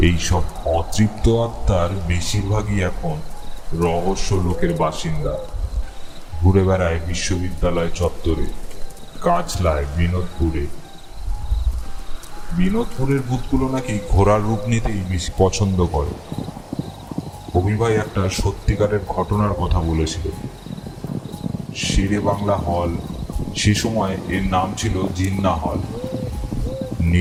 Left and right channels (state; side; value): identical; both; correlation 1.00